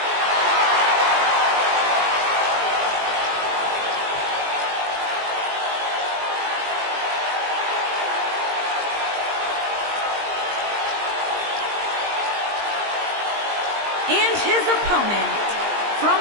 And his opponent, from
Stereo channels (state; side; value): late; left; 20 ms